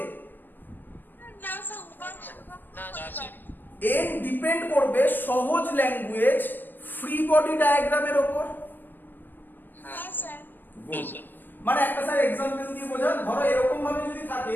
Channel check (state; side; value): late; right; 0.091 ms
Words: না স্যার, না স্যার। এন ডিপেন্ড করবে সহজ ল্যাঙ্গুয়েজ ফ্রি বডি ডায়াগ্রামের উপর। হ্যাঁ স্যার। মানে একটা স্যার এক্সাম্পল দিয়ে বোঝান, ধরো এরকম ভাবে যদি